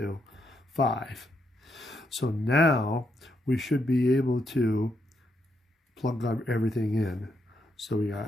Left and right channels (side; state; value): both; normal; correlation 0.78